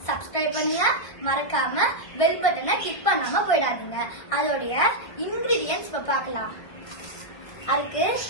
சப்ஸ்கிரைப் பண்ணுங்க, மறக்காம பெல் பட்டனை கிளிக் பண்ணாம போயிடாதீங்க. அதோடைய இன்கிரீடியன்ஸ் இப்ப பார்க்கலாம். அதுக்கு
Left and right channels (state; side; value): late; right; 1.5 ms